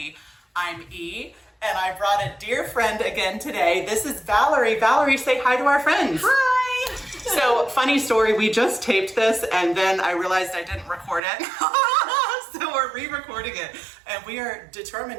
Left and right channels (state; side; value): drops out; left; at 11.2 s